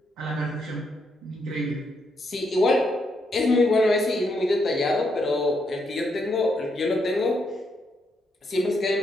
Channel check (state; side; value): normal; both; correlation 0.78